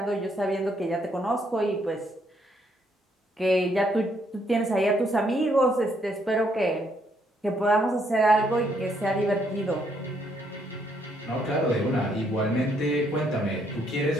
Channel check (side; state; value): both; normal; correlation 0.72